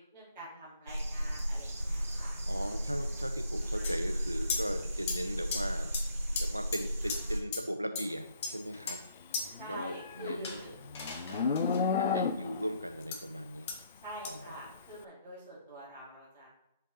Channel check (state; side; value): inverted; both; correlation -0.71